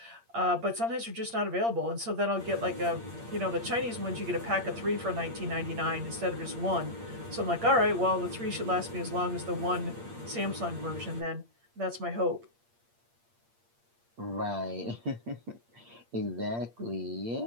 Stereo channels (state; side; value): late; left; 8.6 ms